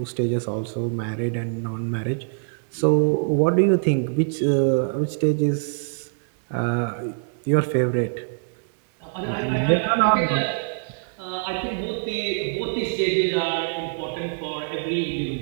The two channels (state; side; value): silent; left; 63 dB below the other